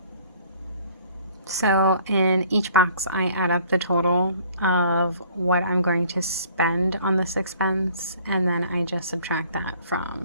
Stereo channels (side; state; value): both; inverted; correlation -0.56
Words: So in each box, I add up the total of what I'm going to spend on this expense, and then I just subtract that